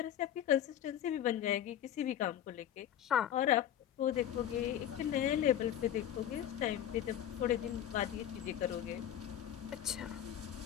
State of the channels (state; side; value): quieter; right; 10.8 dB